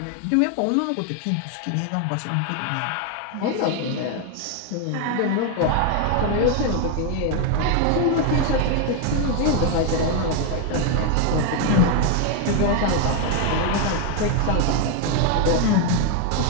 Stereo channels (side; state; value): both; different; correlation 0.01